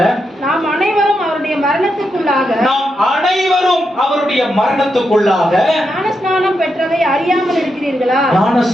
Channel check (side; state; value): both; normal; correlation 0.84